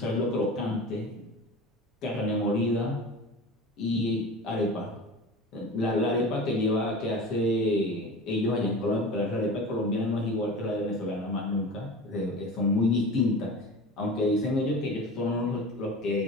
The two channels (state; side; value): normal; both; correlation 0.35